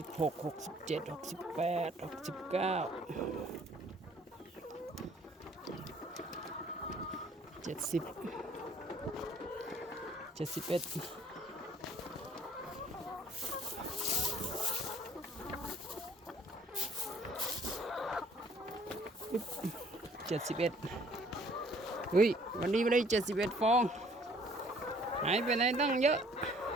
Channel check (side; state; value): both; normal; correlation 0.59